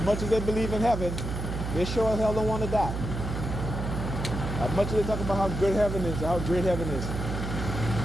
much as they believe in heaven, they sure as hell don't want to die. As much as they talk about how good heaven is, how great heaven is,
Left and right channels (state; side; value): noise; right; hum, 4 dB below the sound